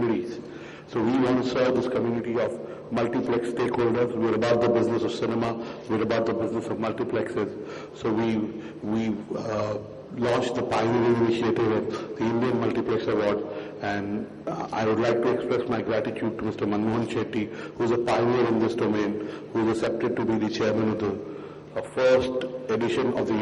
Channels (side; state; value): both; identical; correlation 1.00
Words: So we want to serve this community of multiplex stakeholders. We're about the business of cinema, we're about the business of multiplexes. So we launched the pioneering initiative of the Indian Multiplex Award, and I would like to express my gratitude to Mr. Manmohan Shetty, who is a pioneer in this domain, who is accepted to be the chairman of the first edition of the